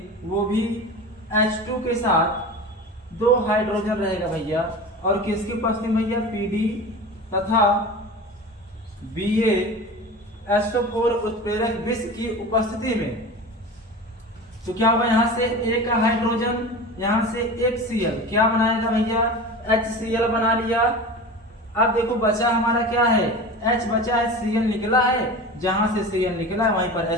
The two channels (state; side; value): normal; both; correlation 0.32